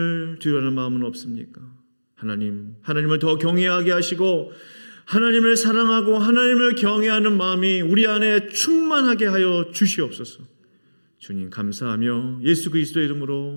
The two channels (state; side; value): inverted; both; correlation -1.00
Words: 두려워하는 마음은 없습니까? 하나님을 더 경외하게 하시고 하나님을 사랑하고 하나님을 경외하는 마음이 우리 안에 충만하게 하여 주시옵소서. 주님 감사하며 예수 그리스도의